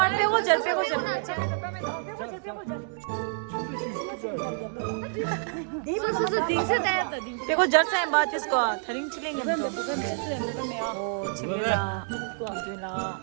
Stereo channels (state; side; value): silent; left; digital silence